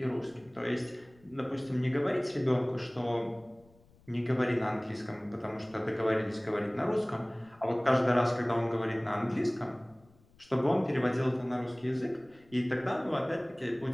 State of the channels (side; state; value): left; noise; rumble, 29 dB below the sound